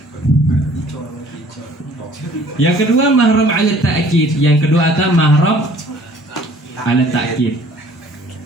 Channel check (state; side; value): normal; both; correlation 0.54